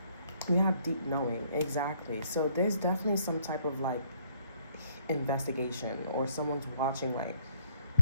We have deep knowing, exactly. So there's definitely some type of like investigation, or someone's watching, like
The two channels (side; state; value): both; inverted; correlation -0.65